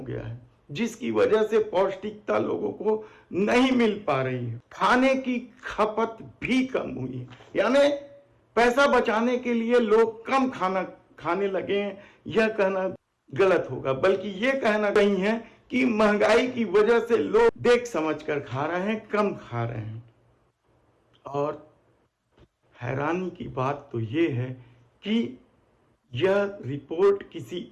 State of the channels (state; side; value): identical; both; correlation 1.00